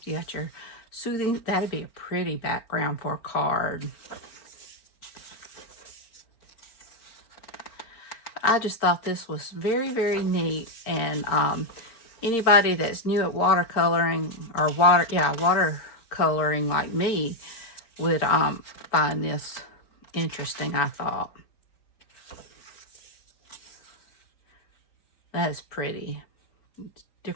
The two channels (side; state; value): right; late; 4.4 ms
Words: You got your soothing. That'd be a pretty background for a card. I just thought this was very, very neat. And anybody that's new at watercoloring or watercoloring like me would find this interesting, I thought. That is pretty.